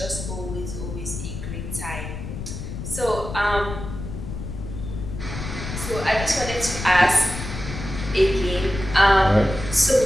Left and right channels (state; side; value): noise; left; rumble, 7 dB below the sound